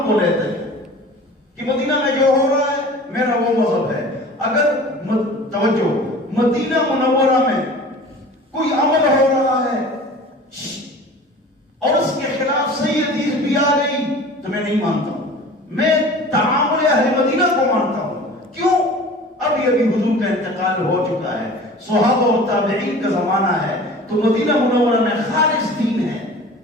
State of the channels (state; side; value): normal; both; correlation 0.41